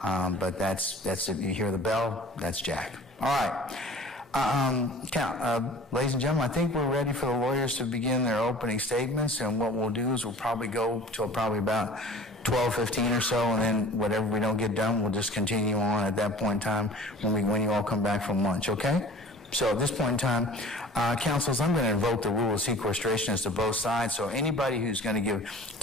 but that's if you hear the bell, that's Jack. All right. Ladies and gentlemen, I think we're ready for the lawyers to begin their opening statements, and what we'll do is we'll probably go till probably about 12:15 or so, and then whatever we don't get done, we'll just continue on at that point in time when you all come back from lunch, okay? So at this point in time, counsels, I'm going to invoke the rule of sequestration as to both sides. So anybody who's going to give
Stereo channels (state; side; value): normal; both; correlation 0.45